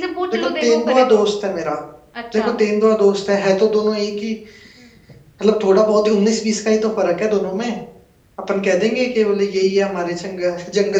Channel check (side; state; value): both; identical; correlation 1.00